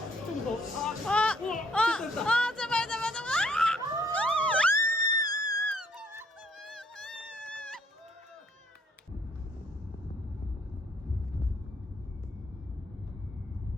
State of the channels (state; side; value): normal; both; correlation 0.65